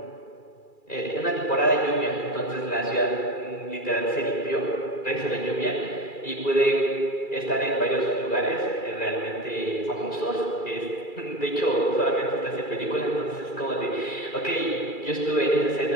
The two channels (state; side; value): late; right; 2.3 ms